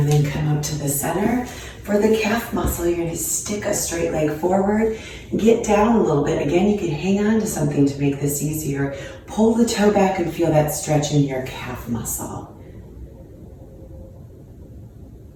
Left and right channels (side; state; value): both; identical; correlation 1.00